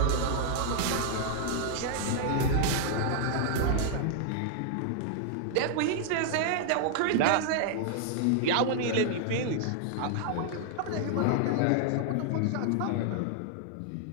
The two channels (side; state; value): both; different; correlation 0.00